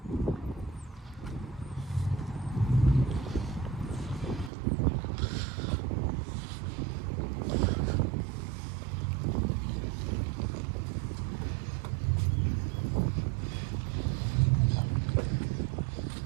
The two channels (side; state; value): left; drops out; at 4.5 s